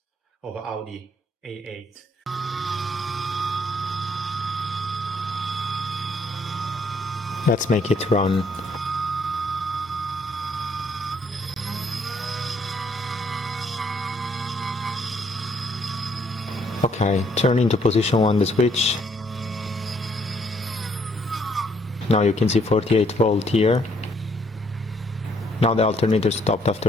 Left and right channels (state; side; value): normal; both; correlation 0.68